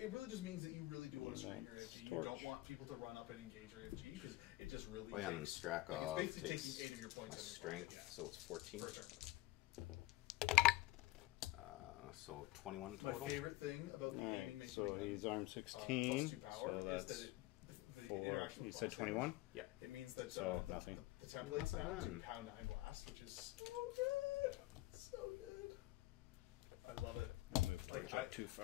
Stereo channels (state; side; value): quieter; right; 17.7 dB